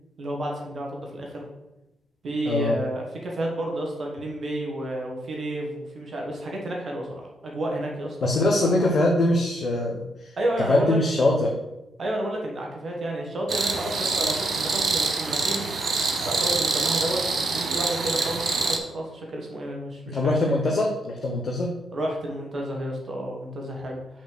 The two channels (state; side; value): normal; both; correlation 0.75